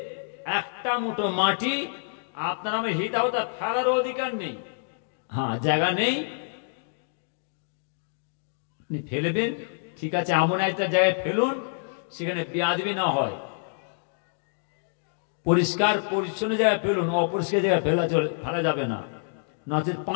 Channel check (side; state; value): right; silent; digital silence